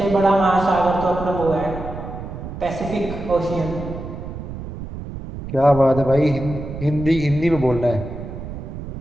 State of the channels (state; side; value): noise; right; rumble, 9 dB below the sound